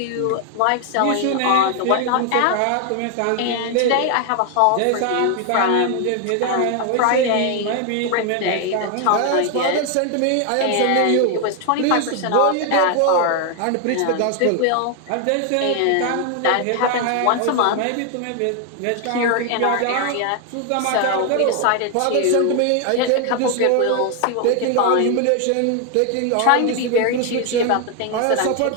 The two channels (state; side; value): different; both; correlation 0.01